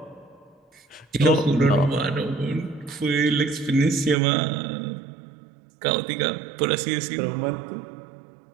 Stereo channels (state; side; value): drops out; left; at 4.2 s